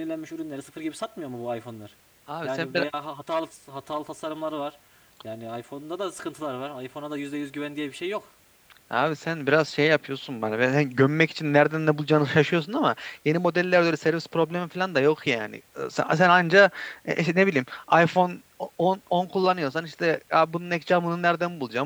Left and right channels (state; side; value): identical; both; correlation 1.00